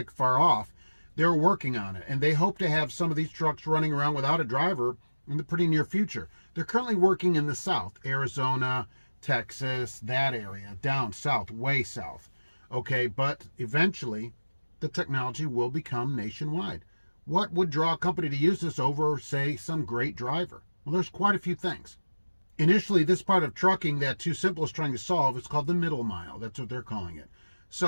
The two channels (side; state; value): both; inverted; correlation -1.00